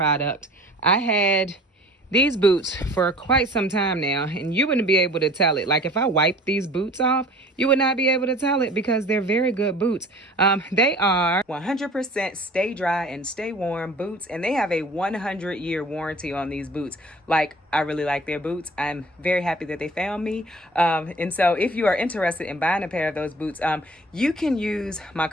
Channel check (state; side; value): normal; both; correlation 0.46